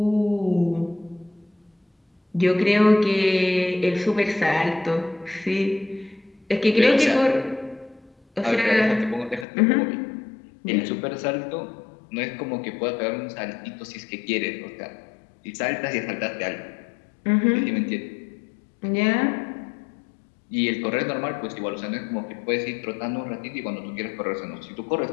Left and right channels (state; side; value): drops out; right; at 9.5 s